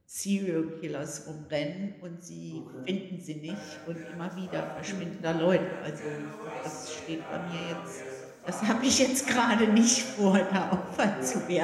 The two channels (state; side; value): identical; both; correlation 1.00